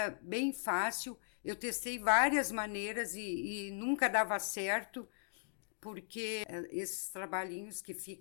bem fácil, eu testei várias maneiras e nunca dava certo, porque esses trabalhinhos que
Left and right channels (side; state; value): right; silent; digital silence